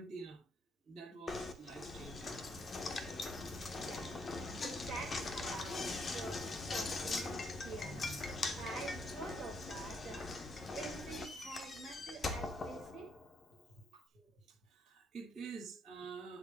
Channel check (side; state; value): both; normal; correlation 0.74